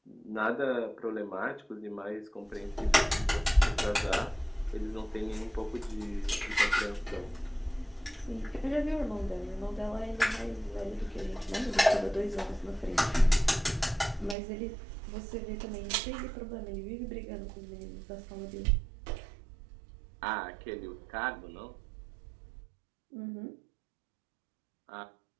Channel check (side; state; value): left; drops out; at 14.4 s